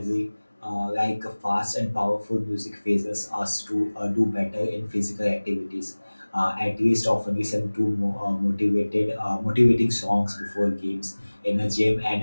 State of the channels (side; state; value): both; inverted; correlation -1.00